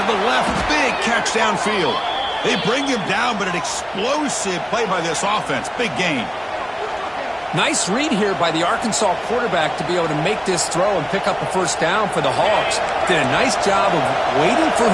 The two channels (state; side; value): identical; both; correlation 1.00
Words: the left. Big catch downfield. They bring him down, but an explosive play by this offense. Big gain. Nice read here by the Arkansas quarterback to be able to make this throw and pick up a 1st down for the Hogs. Did a nice job of waiting for